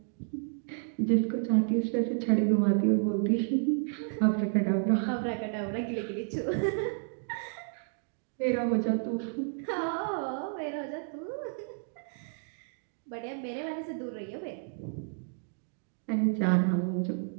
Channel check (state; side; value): silent; left; 57 dB below the other